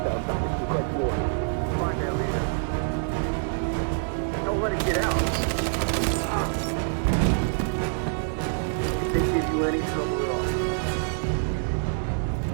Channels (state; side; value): silent; left; digital silence